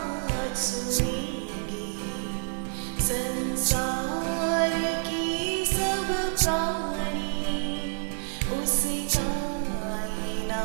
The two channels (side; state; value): left; silent; digital silence